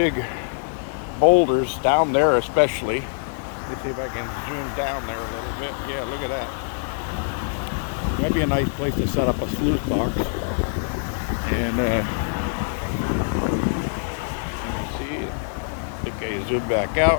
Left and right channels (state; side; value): silent; right; 63 dB below the other